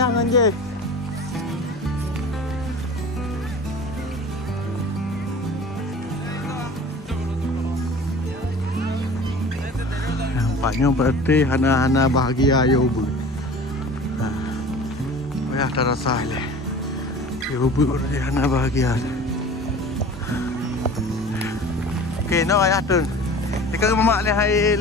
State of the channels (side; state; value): both; normal; correlation 0.40